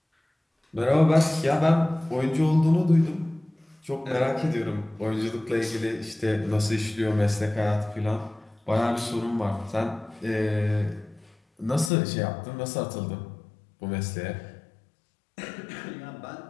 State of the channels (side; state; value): right; drops out; at 11.9 s